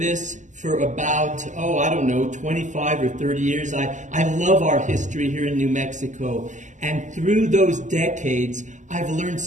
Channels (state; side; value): late; left; 0.36 ms